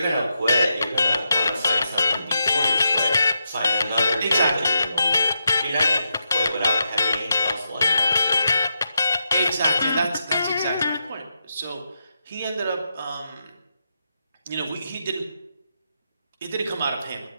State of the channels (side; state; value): both; inverted; correlation -0.85